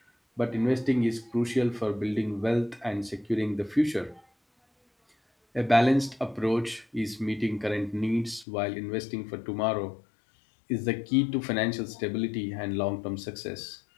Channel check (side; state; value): right; drops out; at 8.5 s